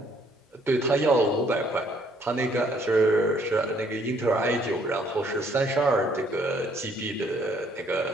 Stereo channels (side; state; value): both; normal; correlation 0.65